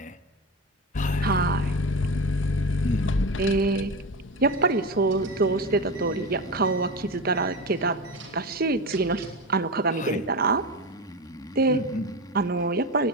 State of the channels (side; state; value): both; normal; correlation 0.22